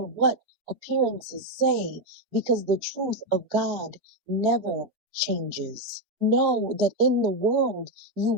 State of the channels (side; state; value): left; late; 3.7 ms